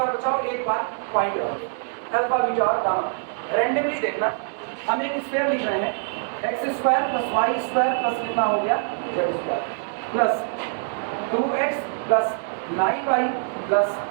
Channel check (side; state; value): left; silent; digital silence